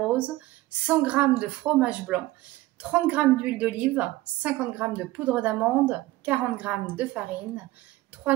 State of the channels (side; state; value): left; quieter; 17.8 dB